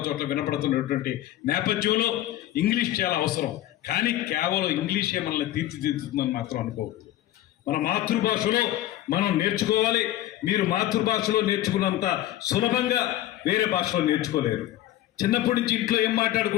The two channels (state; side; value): quieter; right; 14.0 dB